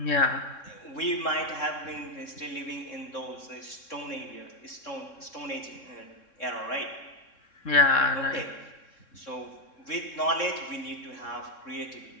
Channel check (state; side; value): late; right; 3.6 ms